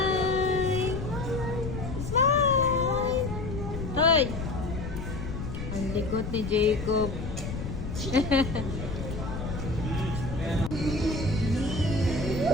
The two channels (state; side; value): noise; left; rumble, 6 dB below the sound